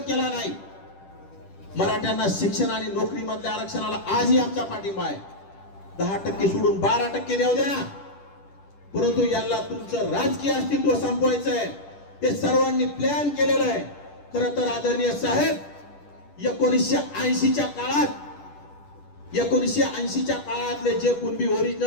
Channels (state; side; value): late; right; 10 ms